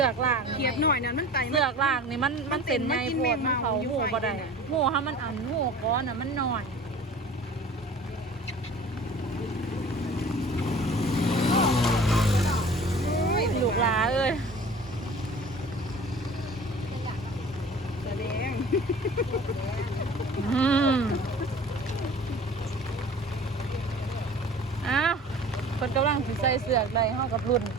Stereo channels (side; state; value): both; normal; correlation 0.43